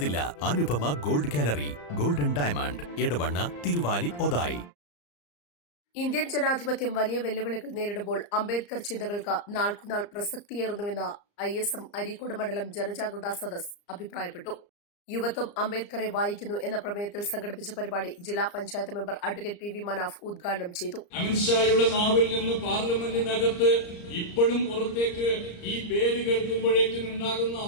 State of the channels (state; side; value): late; right; 34 ms